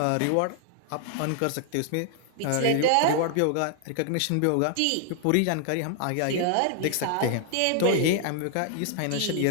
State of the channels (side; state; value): both; different; correlation 0.00